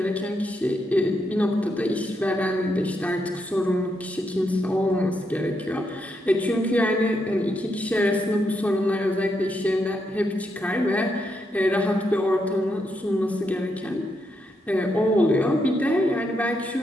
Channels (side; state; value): both; normal; correlation 0.80